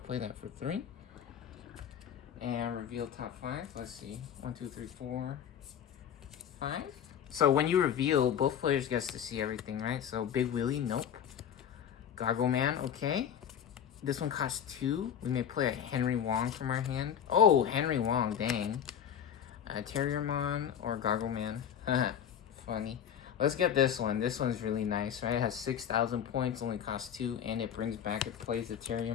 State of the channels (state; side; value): quieter; right; 8.7 dB